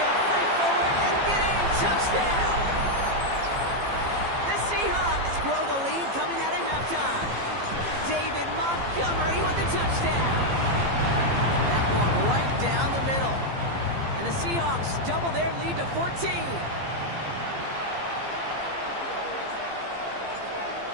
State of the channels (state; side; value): late; left; 15 ms